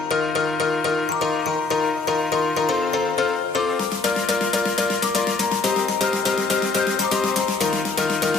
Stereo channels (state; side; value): quieter; right; 3.7 dB